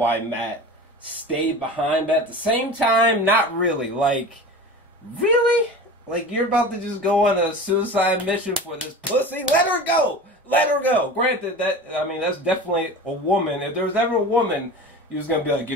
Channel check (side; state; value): both; normal; correlation 0.33